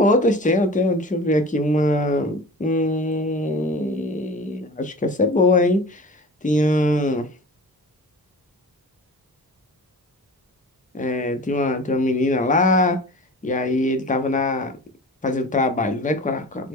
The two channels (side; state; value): both; normal; correlation 0.38